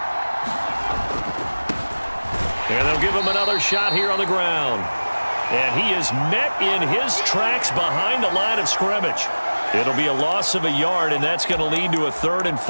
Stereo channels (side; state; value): both; inverted; correlation -1.00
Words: And they'll give him another shot here on the ground. And he is met in his tracks behind the line of scrimmage. It'll be a loss of a yard, and that's going to lead to a 3rd and